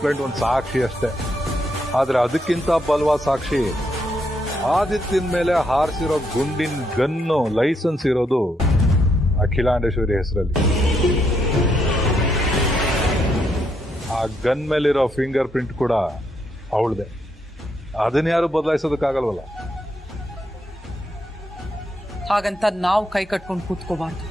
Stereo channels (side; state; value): both; normal; correlation 0.77